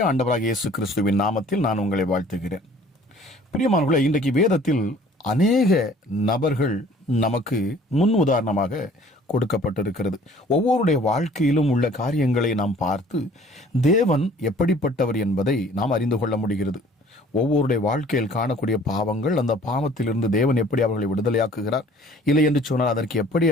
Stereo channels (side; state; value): both; normal; correlation 0.53